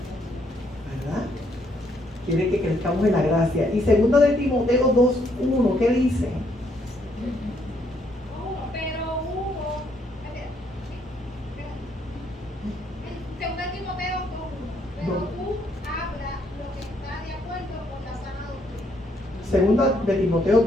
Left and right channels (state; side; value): normal; both; correlation 0.71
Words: ¿Verdad? Quiere que crezcamos en la gracia. Y 2 de Timoteo 2:1, ¿qué dice? Segunda de Timoteo